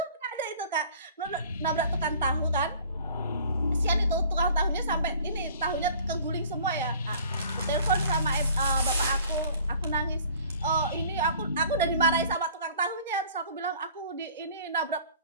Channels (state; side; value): inverted; both; correlation -0.50